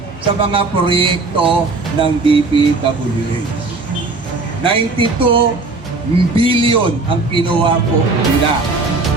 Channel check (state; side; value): quieter; left; 3.6 dB